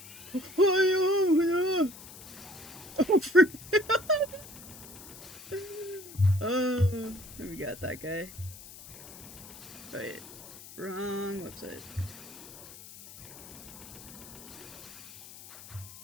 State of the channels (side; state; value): left; noise; hiss, 16 dB below the sound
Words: Oh we got that guy. Right. Wrong website.